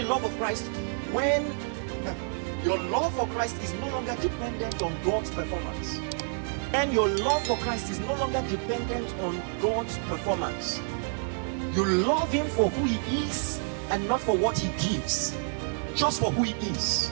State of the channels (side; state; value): left; silent; 59 dB below the other